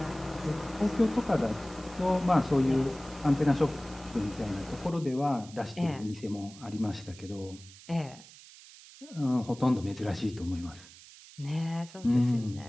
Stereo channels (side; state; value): right; noise; hiss, 20 dB below the sound